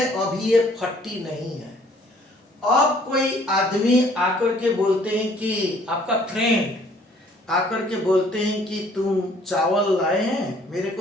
अभी ये 40 नहीं है। अब कोई आदमी आकर के बोलते हैं कि आपका फ्रेंड आकर के बोलते हैं कि तुम चावल लाए हैं, मेरे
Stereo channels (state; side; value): normal; both; correlation 0.59